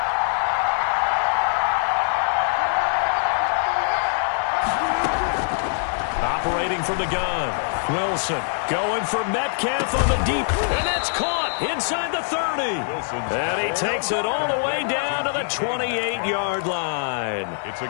Operating from the gun. Wilson going for Metcalf on the deep. And that's caught inside the 30. And he takes it all the way down to the 28-yard line. It's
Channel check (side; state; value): right; silent; 57 dB below the other